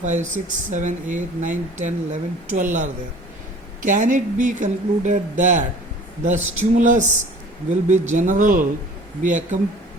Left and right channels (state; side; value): normal; both; correlation 0.47